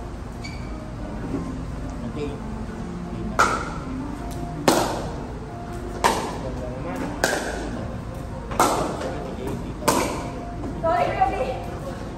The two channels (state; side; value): identical; both; correlation 1.00